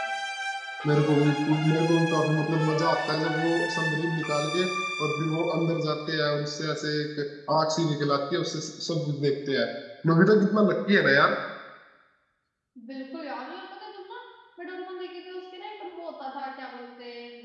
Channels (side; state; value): both; identical; correlation 1.00